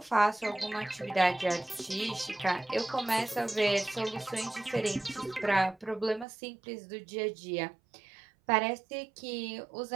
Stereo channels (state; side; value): drops out; left; at 6.2 s